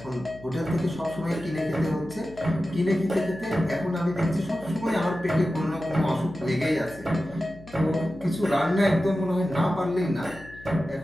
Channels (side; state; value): left; noise; hum, 19 dB below the sound